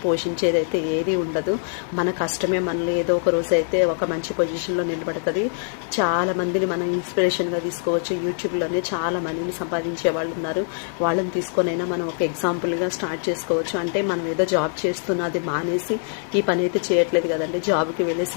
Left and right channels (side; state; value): right; silent; digital silence